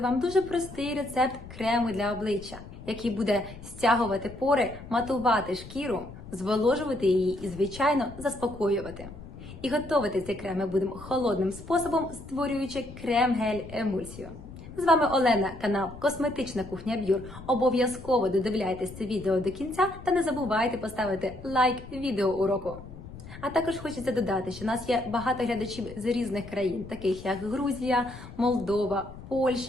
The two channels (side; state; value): left; noise; rumble, 15 dB below the sound